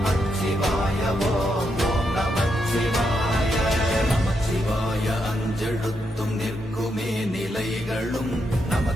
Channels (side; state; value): both; normal; correlation 0.81